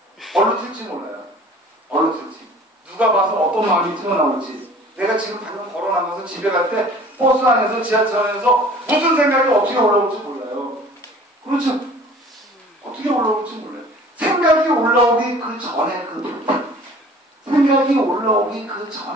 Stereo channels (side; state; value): both; normal; correlation 0.48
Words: 얼른 틀지 몰라요. 얼른 틀지. 누가 봐서 어떤 마음이 튀어나올지. 내가 지금 방금 걸어나가서 집에 갈 때 버스 안에서 지하철 안에서 무슨 생각이 어떻게 올라올지 몰라요. 그렇죠? 어떻게 올라올지 몰라요. 생각이 올라오기 그 전에 그 마음. 생각이 올라오기 그